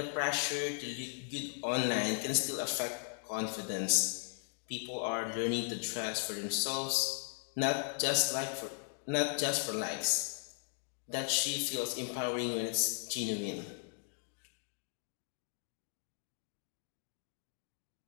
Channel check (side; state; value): right; silent; 53 dB below the other